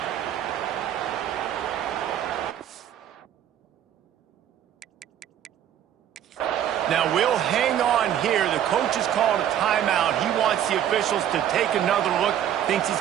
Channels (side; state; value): left; quieter; 10.5 dB